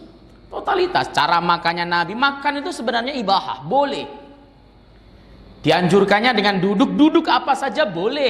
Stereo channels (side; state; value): both; identical; correlation 1.00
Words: Totalitas. Cara makannya Nabi, makan itu sebenarnya ibahah, boleh. Dianjurkannya dengan duduk apa saja